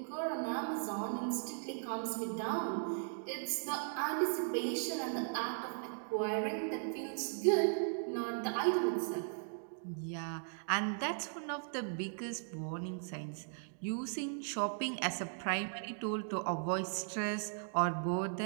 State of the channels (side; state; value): left; silent; digital silence